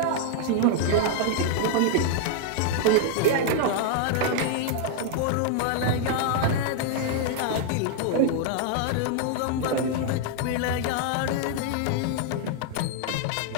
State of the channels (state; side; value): different; both; correlation 0.00